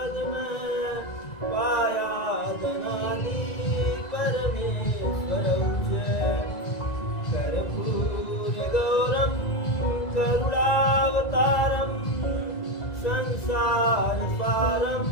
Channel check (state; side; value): late; right; 1.9 ms